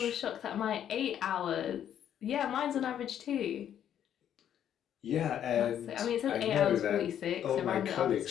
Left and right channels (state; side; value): quieter; right; 9.9 dB